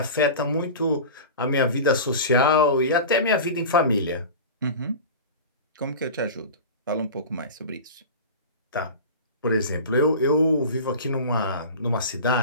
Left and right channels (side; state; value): both; inverted; correlation -0.32